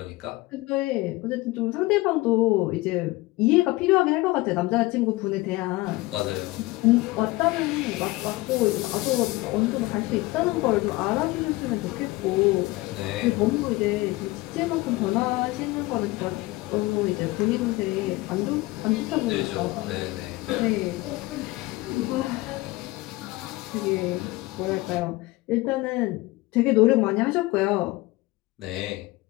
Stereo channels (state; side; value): quieter; right; 20.7 dB